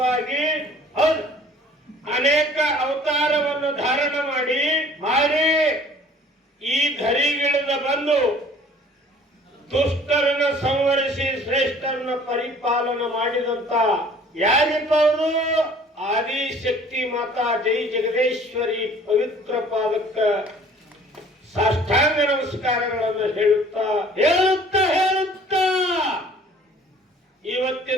ಹೌದು, ಅನೇಕ ಅವತಾರವನ್ನು ಧಾರಣ ಮಾಡಿ ಈ ಧರಿಗಿಳಿದ ಬಂದು ದುಷ್ಟರನ್ನು ಸಂವರಿಸಿ ಶ್ರೇಷ್ಠರನ್ನು ಪರಿಪಾಲನ ಮಾಡಿದಂತ ಯಾರಿಪ್ಪ ಅವರು ಆದಿಶಕ್ತಿ ಮಾತಾ ಜೈ ಜಗದೇಶ್ವರಿ ಪವಿತ್ರ ಪಾದಕ್ಕ ಸಾಷ್ಟಾಂಗ ನಮಸ್ಕಾರಗಳನ್ನು ಹೇಳುತ್ತಾ ಹೇಳುತ್ತಾ ಹೇಳುತ್ತಾ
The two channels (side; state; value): both; normal; correlation 0.52